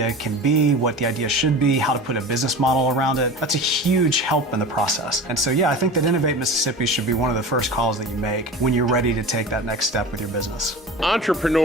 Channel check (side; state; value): both; normal; correlation 0.33